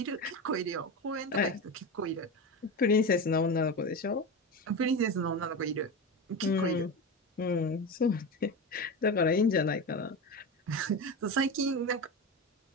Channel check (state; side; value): normal; both; correlation 0.22